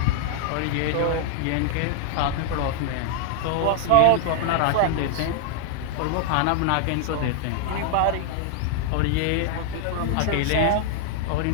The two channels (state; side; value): different; both; correlation -0.01